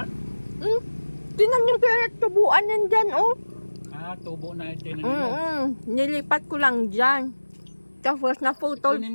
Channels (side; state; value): both; inverted; correlation -1.00